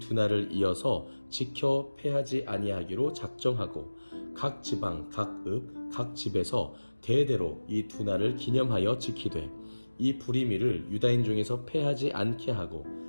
날을 이어서 지켜 패하지 아니하기로 작정하고 각 지방, 각 읍, 각 집에서 대대로 이 두 날을 기념하여 지키되 이 부리미를 유다인 중에서 패하지 않게 하고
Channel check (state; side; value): inverted; both; correlation -1.00